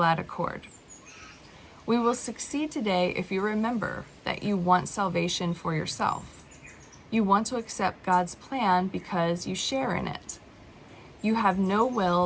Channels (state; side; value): identical; both; correlation 1.00